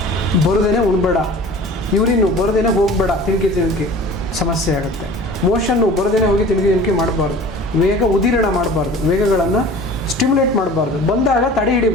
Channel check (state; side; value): normal; both; correlation 0.42